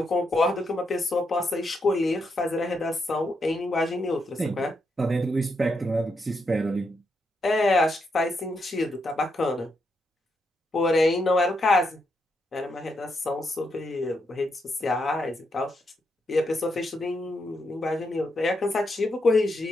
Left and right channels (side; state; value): both; normal; correlation 0.81